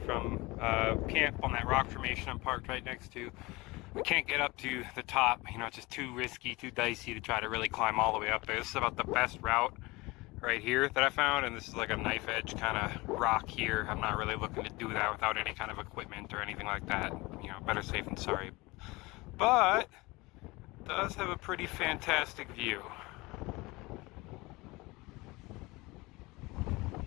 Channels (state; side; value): quieter; right; 22.8 dB